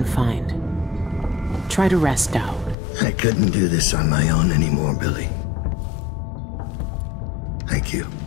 find. Try to rest out. I couldn't do this on my own anymore, Billy. Thank you.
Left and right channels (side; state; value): right; drops out; at 2.8 s